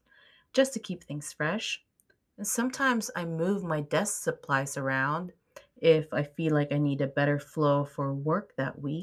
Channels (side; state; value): both; identical; correlation 1.00